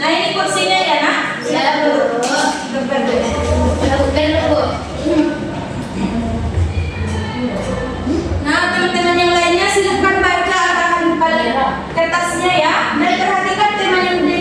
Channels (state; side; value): identical; both; correlation 1.00